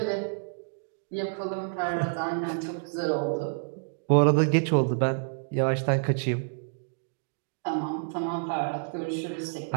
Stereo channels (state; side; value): silent; left; digital silence